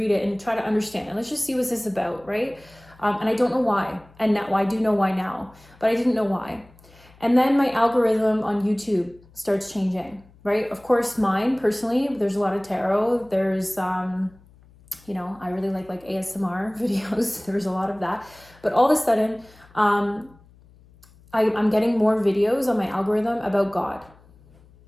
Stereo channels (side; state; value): left; noise; hum, 27 dB below the sound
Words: it and try to understand. And let's just see what's this about, right? And I don't know why. And now I do know why now, but I didn't know why. And then my algorithm on YouTube starts changing, right? Of course, mine personally, there's a lot of tarot. There's, I really like ASMR videos. There's a lot of that. But all of a sudden, I'm getting more videos on my algorithm about God,